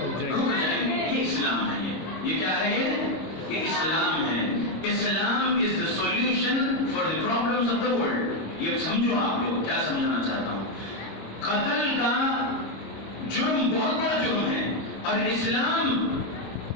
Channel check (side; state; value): right; late; 26 ms